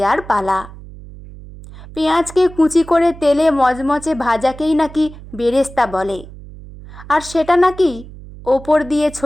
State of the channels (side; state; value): right; noise; hum, 17 dB below the sound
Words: পালা। পেঁয়াজকে কুচি করে তেলে মচমচে ভাজাকেই নাকি বেরেস্তা বলে, আর সেটা নাকি ওপর দিয়ে